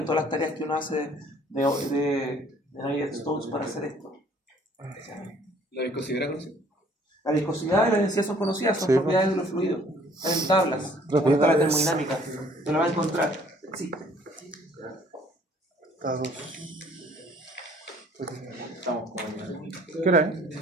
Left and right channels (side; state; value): both; normal; correlation 0.58